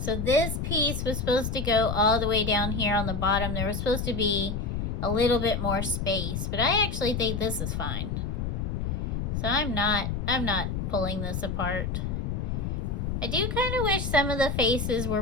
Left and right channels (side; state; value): left; noise; rumble, 2 dB below the sound